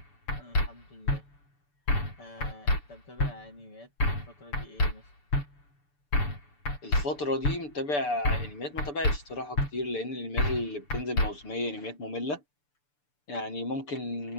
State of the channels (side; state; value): right; late; 6.9 ms